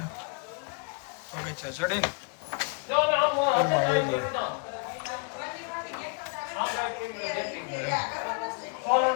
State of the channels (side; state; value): right; quieter; 36.4 dB